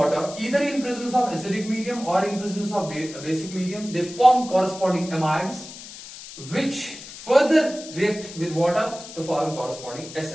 either in presence of acidic medium or in presence of basic medium, they form corresponding amides which further react with water to form corresponding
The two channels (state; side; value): noise; left; hiss, 14 dB below the sound